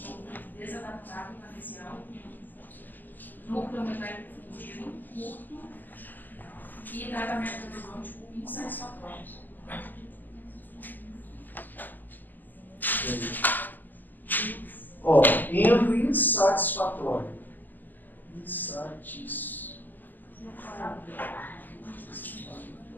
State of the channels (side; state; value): right; late; 0.087 ms